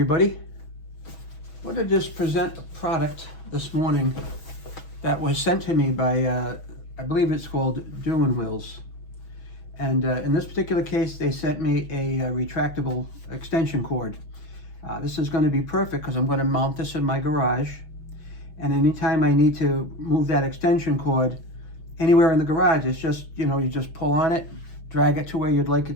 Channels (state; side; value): late; right; 6.2 ms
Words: I wanted to just present a product this morning that was sent to me by, I believe it's called DEWENWILS. And in this particular case, they sent me a retractable extension cord. This is going to be perfect because I'm going to mount this in my garage. And anytime I need to move that extension cord anywhere in the garage, it's just, you just pull on it, drag it to where you'd like